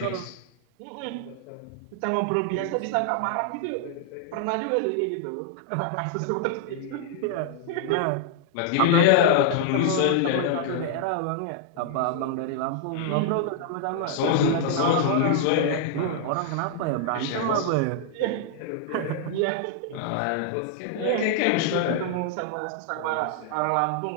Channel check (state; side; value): different; both; correlation -0.01